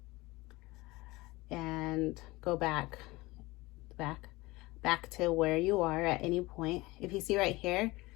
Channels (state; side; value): quieter; right; 21.3 dB